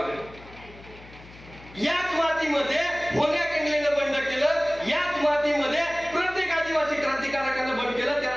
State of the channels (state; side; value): noise; left; hum, 20 dB below the sound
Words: याच मातीमध्ये होण्या केंगलेनं बंड केलं, याच मातीमध्ये प्रत्येक आदिवासी क्रांतिकारकानं बंड केलं,